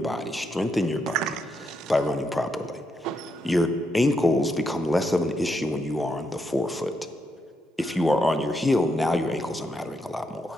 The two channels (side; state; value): both; normal; correlation 0.80